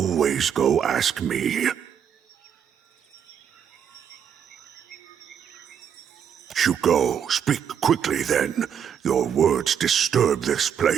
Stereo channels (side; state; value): left; quieter; 8.2 dB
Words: go ask me. You go. Speak quickly then. Your words disturb this